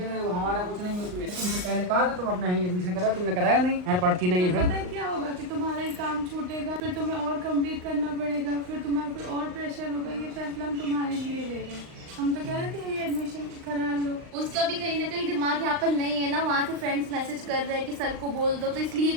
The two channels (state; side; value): late; left; 39 ms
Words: वो हमारा कुछ नहीं है। तुमसे पहले कहा था तुम अपना ही एडमिशन करा, तुमने कराया नहीं, यार पढ़ती नहीं है। फिर पता है क्या होगा कि तुम्हारा ये काम छूटेगा, फिर तुम्हें और कंप्लीट करना पड़ेगा, फिर तुम्हारे पे और प्रेशर होगा। ये फैसला हम तुम्हारे लिए ले रहे हैं। हम तो कह रहे थे ये एडमिशन करा लो। उसका भी कहीं ना कहीं दिमाग यहाँ पर नहीं है ना, वहाँ से फ्रेंड्स मैसेज कर रहे हैं कि सर को बोल दो, तो इसलिए